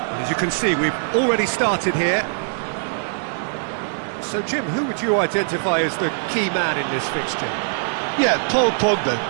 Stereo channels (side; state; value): left; silent; digital silence